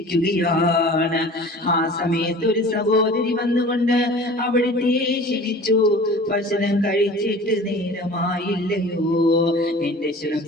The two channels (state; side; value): normal; both; correlation 0.42